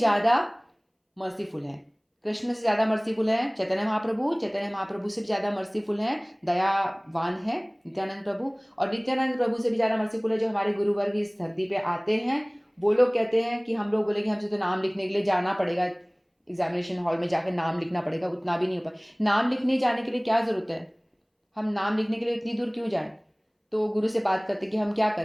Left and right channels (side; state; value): both; identical; correlation 1.00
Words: मर्सीफुल है, कृष्ण से ज़्यादा मर्सीफुल है चैतन्य महाप्रभु से भी ज़्यादा मर्सीफुल है, दयावान है नित्यानंद प्रभु। और नित्यानंद प्रभु से भी ज़्यादा मर्सीफुल है जो हमारे गुरुवर्ग इस धरती पे आते हैं। वो लोग कहते हैं कि हम लोग बोले कि हमसे तो नाम लिखने के लिए जाना पड़ेगा, एग्जामिनेशन हॉल में जाकर नाम लिखना पड़ेगा, उतना भी नहीं हो पाए। नाम लिखने जाने के लिए क्या ज़रूरत है, हम नाम लिखने के लिए इतनी दूर क्यों जाएं। तो गुरु से बात करते कि हम क्या